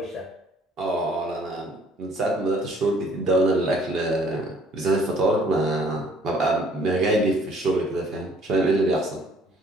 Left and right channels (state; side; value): normal; both; correlation 0.59